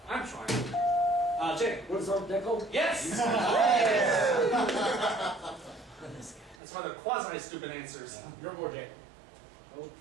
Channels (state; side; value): drops out; left; at 6.6 s